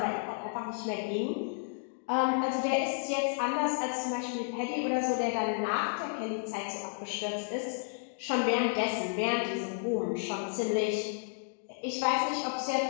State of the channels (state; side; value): silent; right; digital silence